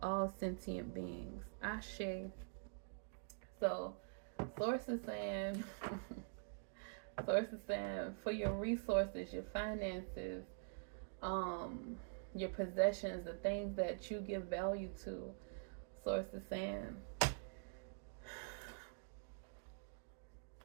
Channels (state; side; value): silent; left; digital silence